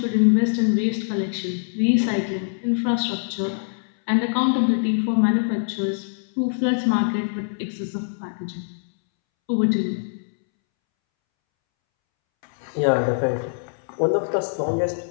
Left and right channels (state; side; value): silent; right; 63 dB below the other